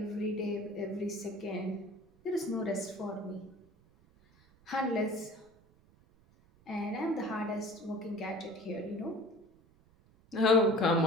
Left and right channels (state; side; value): noise; right; rumble, 29 dB below the sound